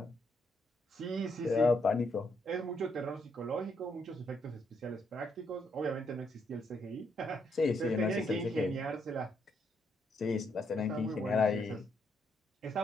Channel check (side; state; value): both; normal; correlation 0.75